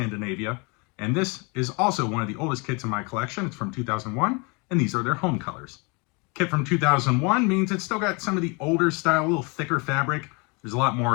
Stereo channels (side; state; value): right; quieter; 30.5 dB